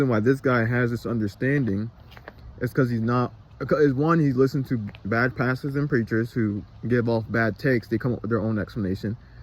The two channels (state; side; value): identical; both; correlation 1.00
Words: why this guy has this understanding is because he's listened to bad pastors and preachers who give off bad takes. They come up with their own explanation,